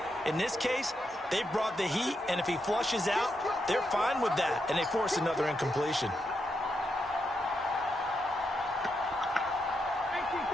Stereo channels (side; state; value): both; normal; correlation 0.83